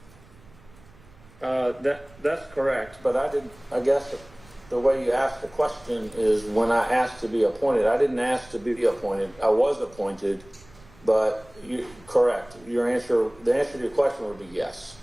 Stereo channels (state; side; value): noise; right; rumble, 25 dB below the sound